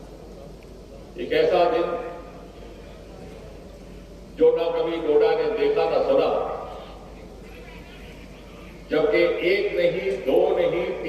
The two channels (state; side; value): identical; both; correlation 1.00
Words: एक ऐसा दिन जो ना कभी डोडा ने देखा ना सुना, जबकि 1 नहीं, 2 नहीं,